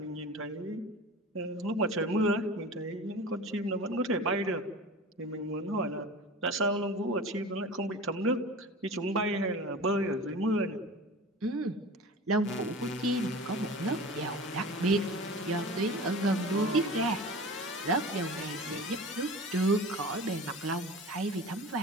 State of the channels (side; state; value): both; normal; correlation 0.36